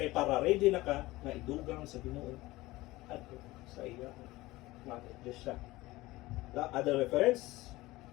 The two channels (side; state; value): right; quieter; 19.2 dB